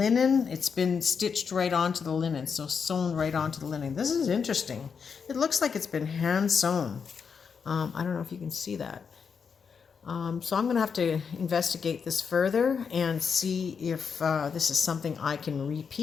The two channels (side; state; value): right; quieter; 6.2 dB